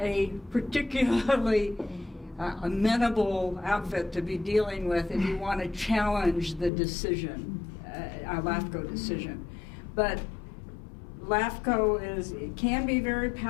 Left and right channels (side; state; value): right; drops out; at 6.7 s